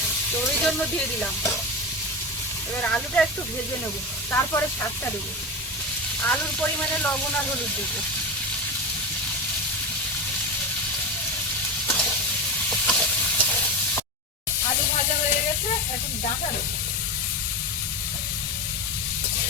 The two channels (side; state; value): both; normal; correlation 0.20